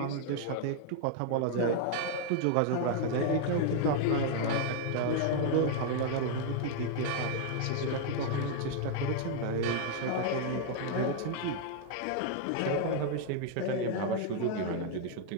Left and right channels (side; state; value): both; different; correlation 0.00